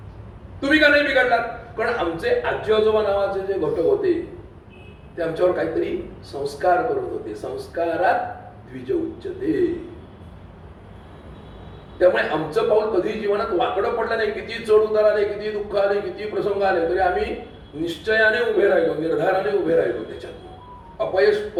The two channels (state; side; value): identical; both; correlation 1.00